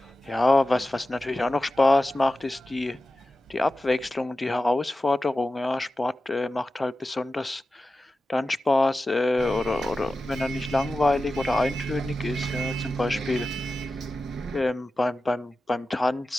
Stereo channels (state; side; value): normal; both; correlation 0.94